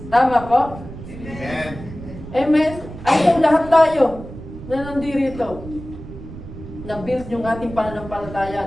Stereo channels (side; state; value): right; noise; rumble, 13 dB below the sound